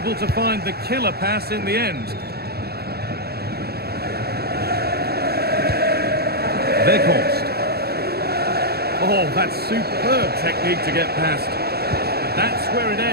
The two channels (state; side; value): late; left; 0.46 ms